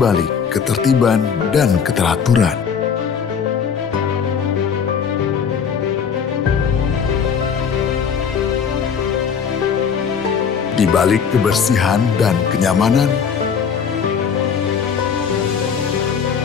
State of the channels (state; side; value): quieter; right; 6.7 dB